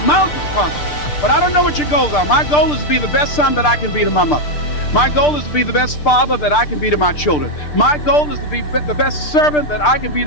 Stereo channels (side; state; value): right; late; 6.7 ms